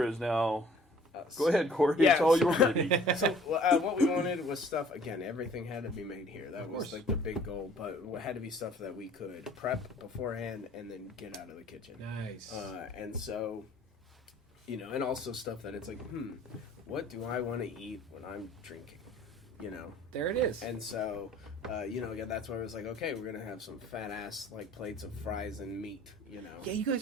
is now... Go ahead, Corey. Yeah, it's all your baby. So what we wanted was stuff. Again, everything had to be made here. That was like the big goal. But it had to be stuff that we could prep beforehand and then get out of the kitchen. Nice. And so, and also stuff that it's like, what do I want to eat when I'm drinking? There it is. And so, again, that's why I was like, okay, we're gonna have some fat ass like plates of fries and meat. Yeah, you guys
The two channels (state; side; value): normal; both; correlation 0.53